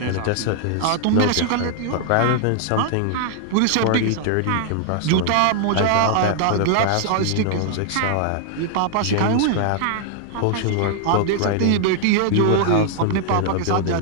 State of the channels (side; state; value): both; different; correlation -0.01